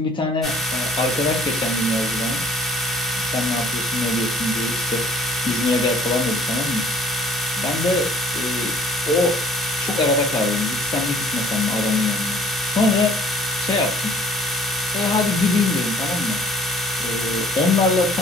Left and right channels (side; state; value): both; normal; correlation 0.55